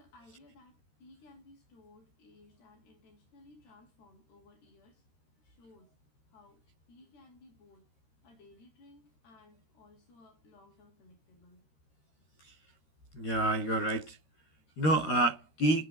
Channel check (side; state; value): right; late; 13 ms